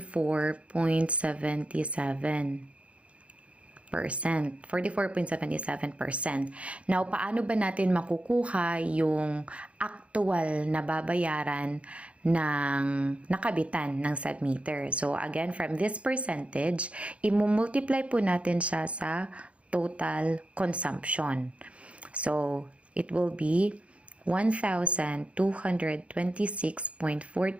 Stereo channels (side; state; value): left; late; 0.062 ms